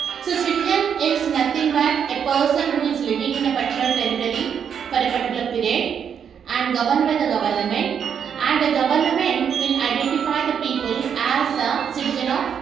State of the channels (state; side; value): quieter; left; 7.7 dB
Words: So, citizen is nothing but a person who is living in a particular territory for a particular period and governed by the government, and the government will identify the people as a citizen of